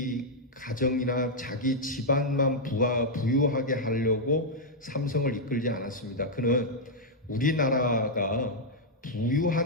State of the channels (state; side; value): normal; both; correlation -0.04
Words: 가정이나 자기 집안만 부유하게 하려고 삼성을 이끌지 않았습니다. 그는 우리나라가